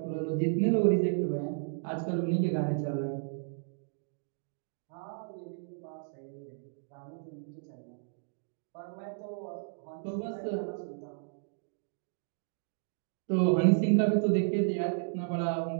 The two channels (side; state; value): left; silent; digital silence